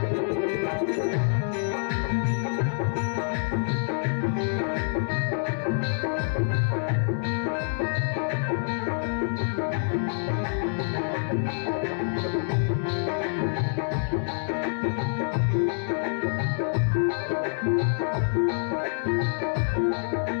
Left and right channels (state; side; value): silent; right; 60 dB below the other